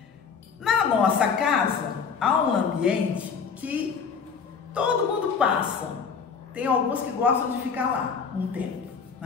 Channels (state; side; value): quieter; right; 6.0 dB